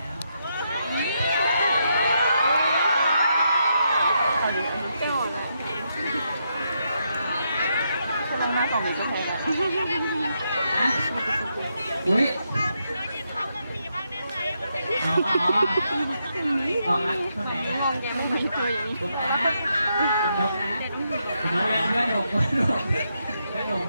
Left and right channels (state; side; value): inverted; both; correlation -0.80